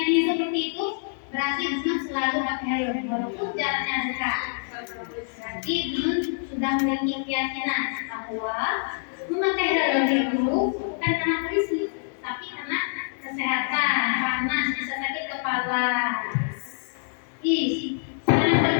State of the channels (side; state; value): right; silent; digital silence